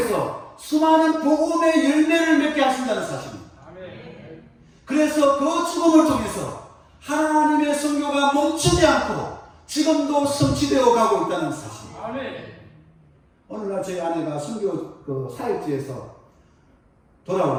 수많은 복음의 열매를 맺게 하신다는 사실입니다. 아멘. 그래서 그 죽음을 통해서 하나님의 선교가 멈추지 않고 지금도 성취되어 가고 있다는 사실. 아멘. 어느 날 저희 아내가 선교 그 사역지에서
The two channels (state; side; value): identical; both; correlation 1.00